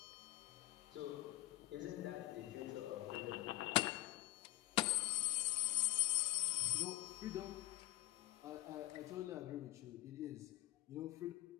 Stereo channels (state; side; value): quieter; right; 19.4 dB